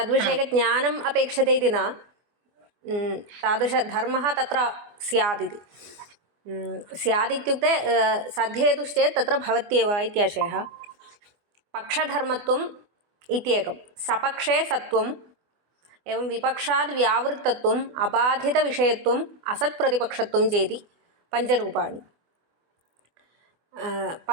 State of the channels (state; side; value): late; left; 24 ms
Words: अपेक्षते इति न तादृशधर्मः तत्र स्यात् इति स्यादित्युक्ते सद्धेतुश्चेत् तत्र भवत्येव इत्याशयः पक्षधर्मत्वम् इत्येकं सपक्षे सत्वम् एवं विपक्षाद् व्यावृत्तत्वम् अबाधितविषयत्वम् असत्प्रतिपक्षत्वं चेति पञ्चरूपाणि